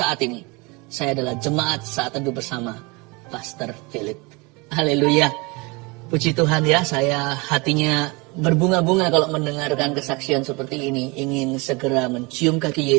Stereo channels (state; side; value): quieter; left; 26.9 dB